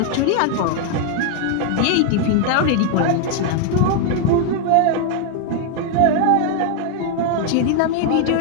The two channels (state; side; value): different; both; correlation 0.00